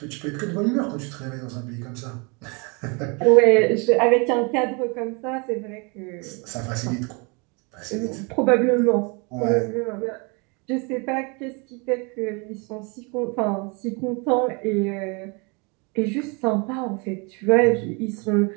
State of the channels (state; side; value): quieter; left; 31.2 dB